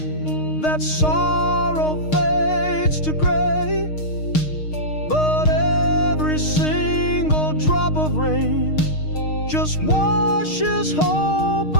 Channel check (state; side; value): late; right; 6.5 ms